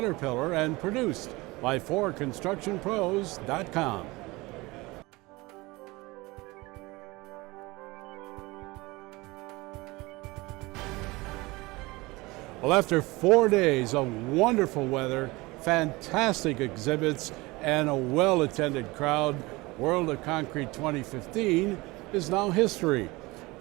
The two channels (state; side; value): quieter; left; 22.4 dB